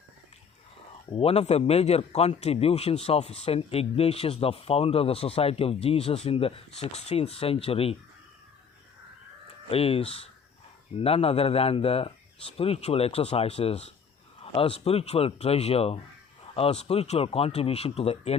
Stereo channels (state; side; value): quieter; right; 6.4 dB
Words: One of the major contributions of St. Ignatius, the founder of the Society of Jesus in the 16th century, is none other than the spiritual exercises, a spiritual treasure, a spiritual contribution to the